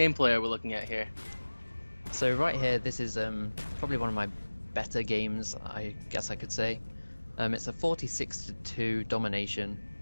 are we looking at here? So right here, this is probably one of my better games, I guess I could say. It's a 46-2 domination.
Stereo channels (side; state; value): both; inverted; correlation -1.00